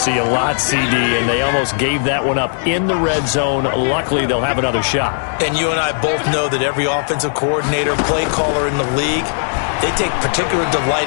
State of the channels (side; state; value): right; silent; digital silence